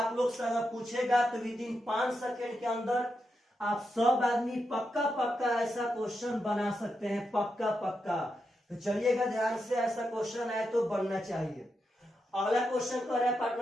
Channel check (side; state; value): both; normal; correlation 0.86